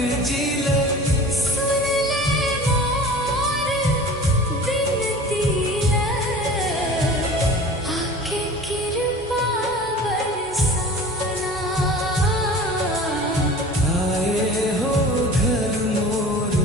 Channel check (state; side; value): normal; both; correlation 0.40